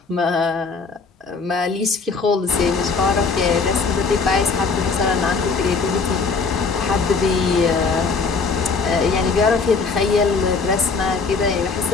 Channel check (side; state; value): right; quieter; 4.6 dB